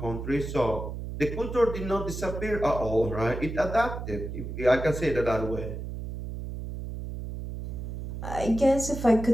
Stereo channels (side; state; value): right; noise; hum, 7 dB below the sound